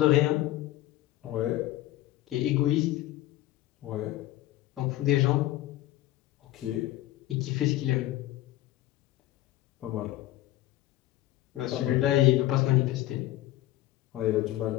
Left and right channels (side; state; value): right; quieter; 15.5 dB